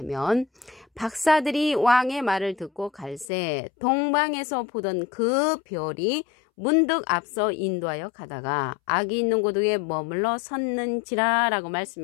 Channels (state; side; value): drops out; right; at 3.2 s